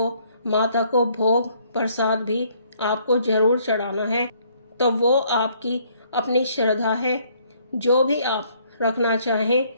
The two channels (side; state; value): both; inverted; correlation -0.65